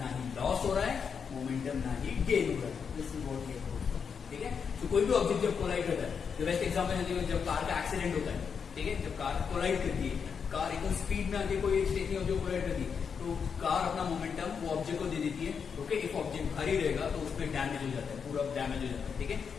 ना ही loss हो रहा है, momentum ना ही gain हो रहा है. This is what we have proved. ठीक है, तो कोई भी ऑब्जेक्ट जब कोलाइड करता है, the best example है जब कार का एक्सीडेंट होता है. ठीक है, जब कार कोलाइड करती है, कार एकदम स्पीड में आके कोई स्टेशन जो कोलाइड करती है, तो कार अपना मोमेंटम वो ऑब्जेक्ट को दे देती है. ओके, इफ ऑब्जेक्ट भारी रहेगा तो उसमें डैमेज हो जाता है, पूरा डैमेज हो जाता है. ठीक है,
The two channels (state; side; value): quieter; right; 6.4 dB